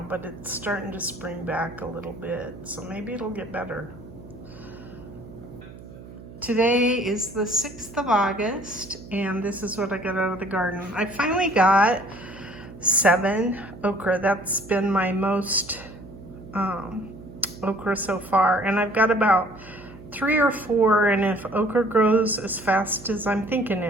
but it's starting to spring back a little bit, so maybe it'll get better. Today is the 6th of August, and this is what I got out of the garden. I finally got 7 okra. That's been my most okra so far, and I've got about 3 or 4, and if okra grows as fast as I'm thinking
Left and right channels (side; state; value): right; noise; hum, 17 dB below the sound